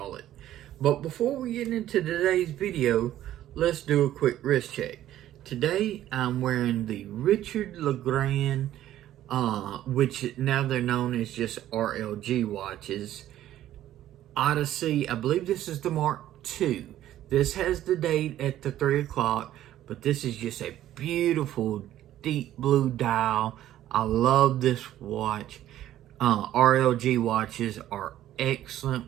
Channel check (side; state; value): left; quieter; 12.8 dB